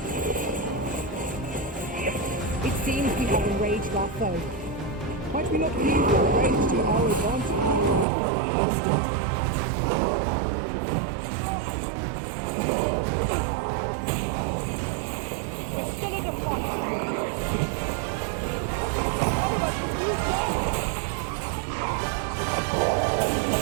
It seems we have enraged our foe. Might we not use our rage to our advantage? Instant. We're still in a fight.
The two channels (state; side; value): drops out; left; at 8.1 s